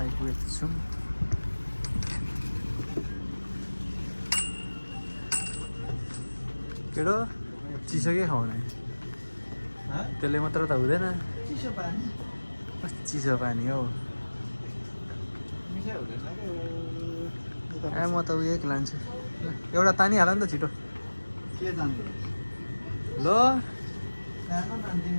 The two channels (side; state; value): both; inverted; correlation -1.00